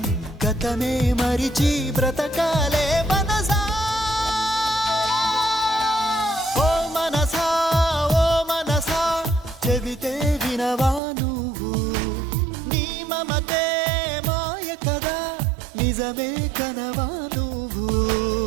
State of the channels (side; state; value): left; drops out; at 11.0 s